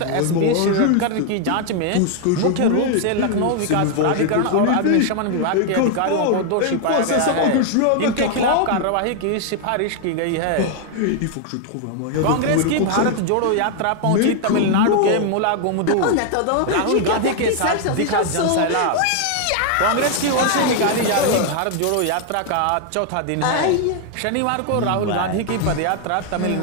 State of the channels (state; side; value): different; both; correlation 0.00